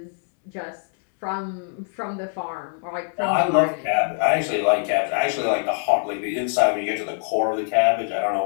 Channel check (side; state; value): right; silent; 63 dB below the other